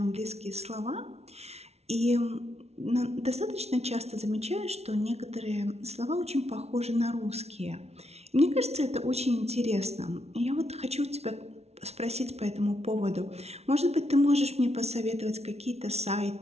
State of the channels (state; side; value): late; left; 0.31 ms